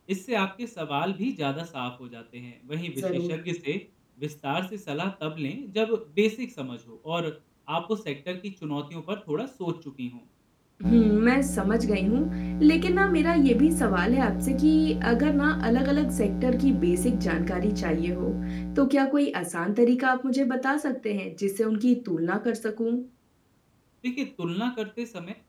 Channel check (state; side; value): identical; both; correlation 1.00